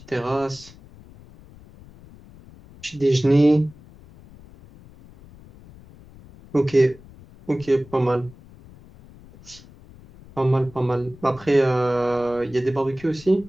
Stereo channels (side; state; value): left; noise; rumble, 22 dB below the sound